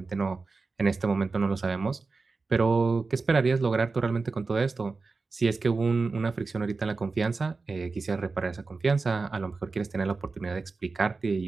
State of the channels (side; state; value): left; quieter; 4.1 dB